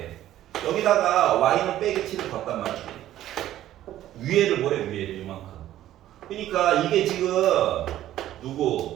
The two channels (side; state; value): left; quieter; 13.1 dB